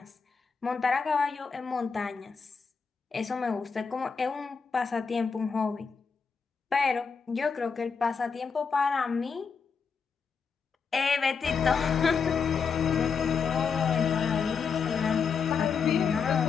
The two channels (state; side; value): quieter; right; 5.7 dB